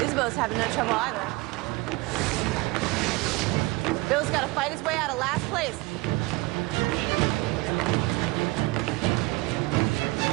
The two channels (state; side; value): quieter; left; 22.9 dB